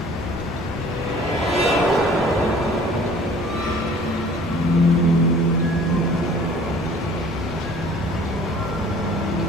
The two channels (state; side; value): normal; both; correlation 0.51